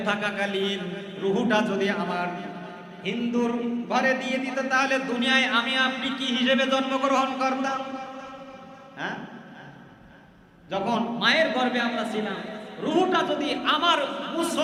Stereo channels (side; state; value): both; identical; correlation 1.00